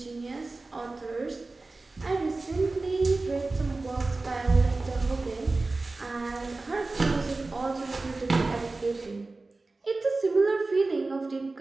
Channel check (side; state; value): left; quieter; 3.4 dB